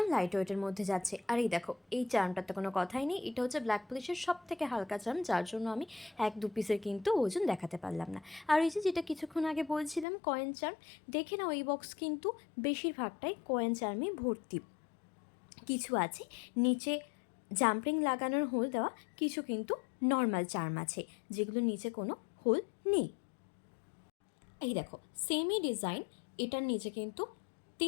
লাইট ওয়েটের মধ্যে যাচ্ছে। আর এই দেখো, এই চার্মটার তো কোনো কথাই নেই, এটা হচ্ছে ব্ল্যাক পলিশের সব থেকে হালকা চার্ম, যার জন্য আমি 1-2 পিসের কিন্তু ওজন দেখাতে পারলাম না। আর এই যে যেটা কিছুক্ষণ আগে বলছিলাম কয়েন চার্ম, দেখে নাও এই বক্স কিন্তু বেশিরভাগটাই কয়েন চার্মে ভর্তি। কিছু আছে নিচে জাম্পিং লাগানোর হোল দেওয়া, কিছু কিন্তু নর্মাল চার্ম আছে যেগুলো নিচে কোনো হোল নেই। এই দেখো, সেমই ডিজাইন, এটার নিচে কিন্তু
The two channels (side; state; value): right; drops out; at 10.1 s